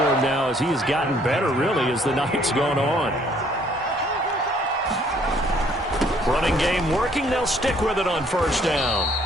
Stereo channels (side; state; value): both; normal; correlation 0.62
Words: now as he has gotten better, really, as the night's gone on. Running game working. They'll stick with it on first down.